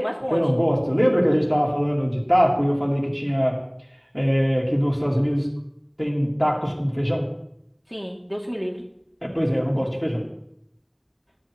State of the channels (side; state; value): both; identical; correlation 1.00